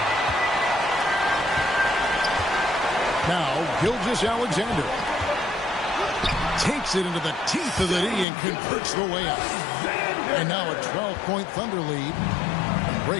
Now, Gilgeous-Alexander takes it into the teeth of the D and converts the way up. And now a 12-point Thunder lead.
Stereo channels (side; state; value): right; drops out; at 8.2 s